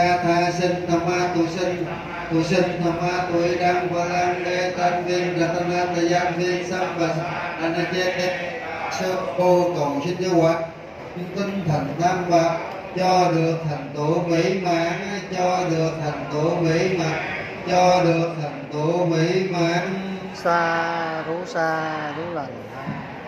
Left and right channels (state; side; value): identical; both; correlation 1.00